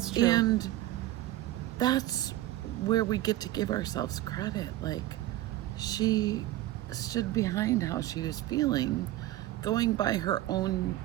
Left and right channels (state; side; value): quieter; left; 15.2 dB